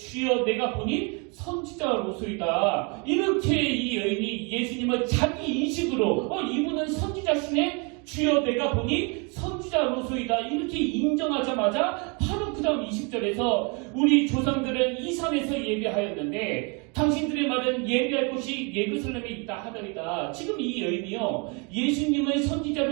내가 보니 선지자로소이다. 이렇게 이 여인이 예수님을 자기 인식으로 이분은 선지자시네, 주여 내가 보니 선지자로소이다, 이렇게 인정하자마자 바로 그 그 다음 20절에서 우리 조상들은 이 산에서 예배하였는데 당신들의 말은 예배할 곳이 예루살렘에 있다 하더이다. 지금 이 여인이요, 예수님을 선지자로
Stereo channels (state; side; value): quieter; left; 32.6 dB